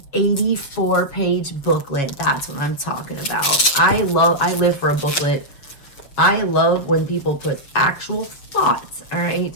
84-page booklet. That's what I'm talking about. I live for a booklet. I love when people put actual thoughts, all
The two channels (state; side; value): late; right; 6.8 ms